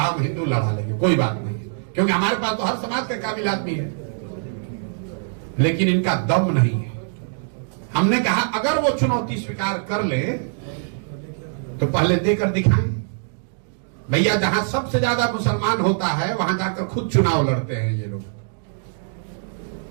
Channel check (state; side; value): silent; left; 64 dB below the other